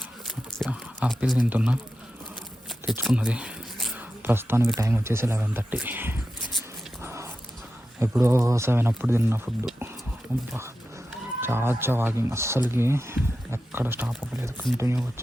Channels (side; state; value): both; normal; correlation 0.91